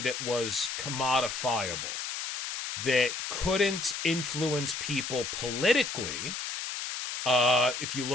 that was commodifiable, that couldn't influence people politically. If you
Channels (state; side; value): noise; left; hiss, 5 dB below the sound